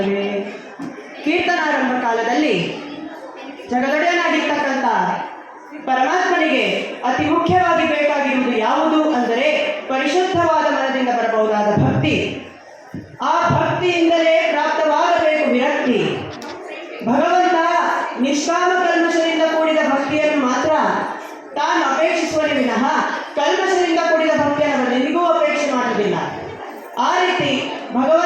ಕೀರ್ತನಾರಂಭ ಕಾಲದಲ್ಲಿ ಜಗದೊಡೆಯನಾಗಿರ್ತಕ್ಕಂಥ ಪರಮಾತ್ಮನಿಗೆ ಅತಿ ಮುಖ್ಯವಾಗಿ ಬೇಕಾಗಿರುವುದು ಯಾವುದು ಅಂದರೆ ಪರಿಶುದ್ಧವಾದ ಮನದಿಂದ ಬರಬಹುದಾದ ಭಕ್ತಿ. ಆ ಭಕ್ತಿಯಿಂದಲೇ ಪ್ರಾಪ್ತವಾಗಬೇಕು ವಿರಕ್ತಿ. ಭಗವಂತ ನಿಷ್ಕಾಮ ಕಲ್ಮಶದಿಂದ ಕೂಡಿದ ಭಕ್ತಿಯನ್ನು ಮಾತ್ರ ತಾನು ಅಪೇಕ್ಷಿಸುವನೇ ವಿನಃ ಕಲ್ಮಶದಿಂದ ಕೂಡಿದ ಭಕ್ತಿಯನ್ನು ಅವನಿಗೂ ಅಪೇಕ್ಷೆ ಮಾಡುವುದಿಲ್ಲ. ಆ ರೀತಿ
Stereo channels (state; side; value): identical; both; correlation 1.00